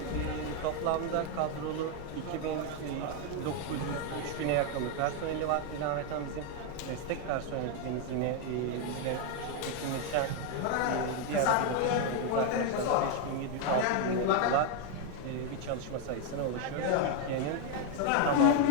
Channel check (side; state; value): both; different; correlation 0.01